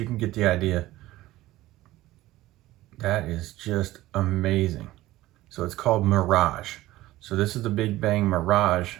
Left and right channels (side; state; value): left; quieter; 16.6 dB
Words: can get the idea. That is just amazing. So it's called Mirage. So this is the Big Bang Mirage